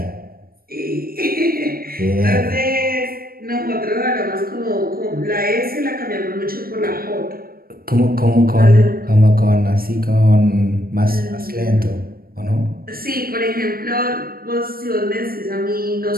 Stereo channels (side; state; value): left; late; 0.43 ms